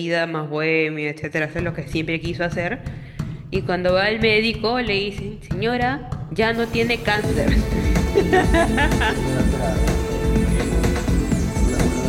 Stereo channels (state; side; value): identical; both; correlation 1.00